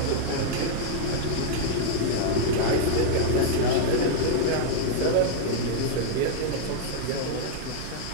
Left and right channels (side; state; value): both; different; correlation -0.01